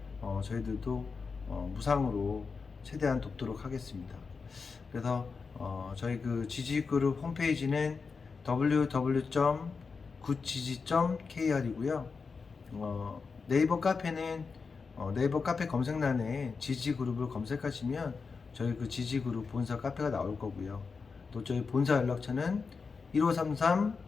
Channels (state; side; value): quieter; right; 5.0 dB